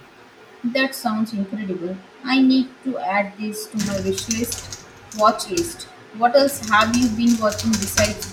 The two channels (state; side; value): identical; both; correlation 1.00